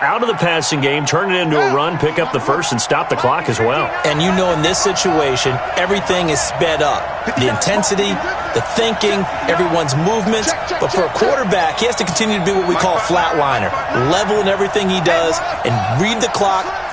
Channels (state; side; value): identical; both; correlation 1.00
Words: out of the passing game, turn it into a run, pick up the first, and stop the clock as well. And you know in this situation, everything is sped up. The intensity, the thinking, everyone's movements. But for a quarterback, he has to continue to be what we call a flatliner. Level in everything he does and read the clock,